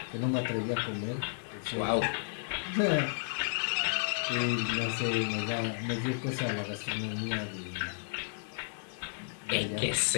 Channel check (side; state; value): right; silent; digital silence